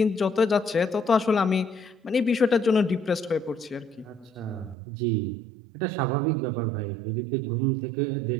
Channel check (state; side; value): drops out; left; at 4.8 s